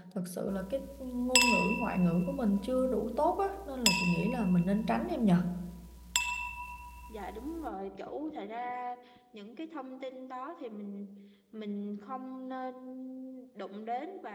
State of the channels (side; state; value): both; identical; correlation 1.00